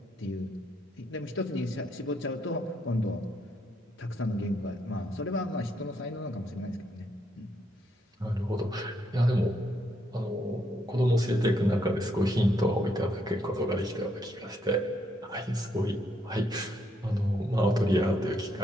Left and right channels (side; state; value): both; normal; correlation 0.75